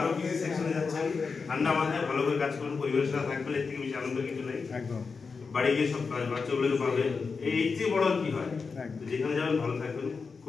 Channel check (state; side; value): quieter; right; 4.9 dB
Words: কিছু সেকশনে যাচ্ছেন, ঠান্ডা মাথায় ভালো করে কাজ করুন, পরিবারের সাথে থাকবেন, এর থেকে বেশি আনন্দ কিছু নেই। একদম বাড়ি গিয়ে সব বাচ্চাগুলোকে পাবে, এই চেয়ে বড় কি হয়, যেখানে যাবেন ভালো থাকবেন,